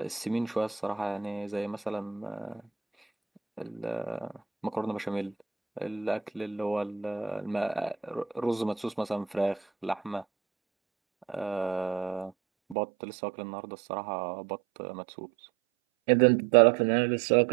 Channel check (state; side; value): drops out; left; at 12.8 s